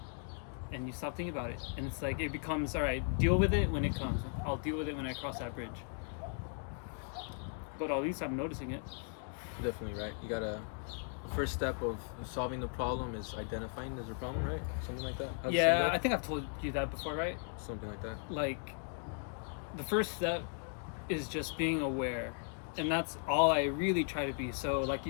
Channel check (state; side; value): silent; right; 53 dB below the other